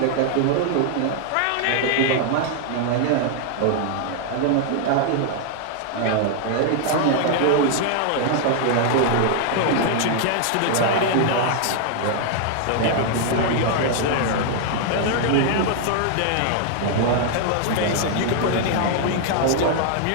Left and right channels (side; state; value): both; different; correlation 0.00